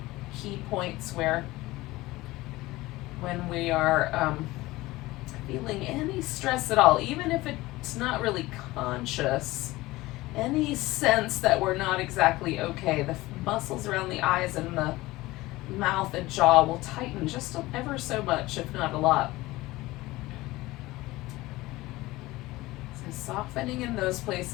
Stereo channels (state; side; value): quieter; right; 19.2 dB